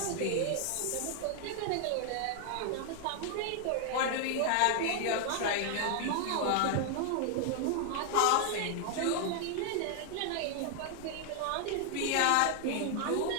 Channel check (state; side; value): different; both; correlation 0.00